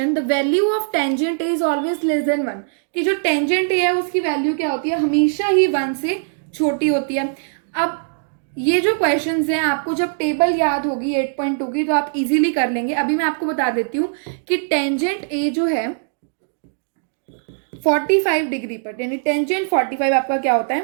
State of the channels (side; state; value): left; silent; digital silence